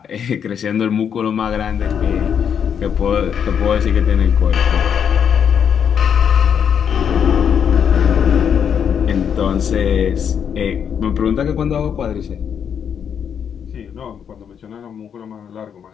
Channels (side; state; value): right; quieter; 7.9 dB